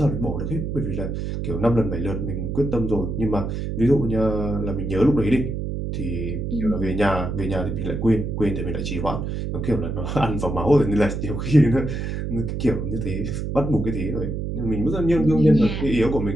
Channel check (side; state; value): right; noise; hum, 3 dB below the sound